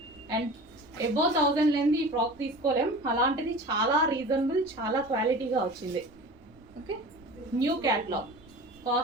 and above 1000 లేని ఈ ఫ్రాక్ తీసుకోలేం, అలాంటిది చాలా రీజనబుల్, చాలా క్వాలిటీగా వచ్చింది. Okay, new catalogue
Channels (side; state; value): right; noise; rumble, 27 dB below the sound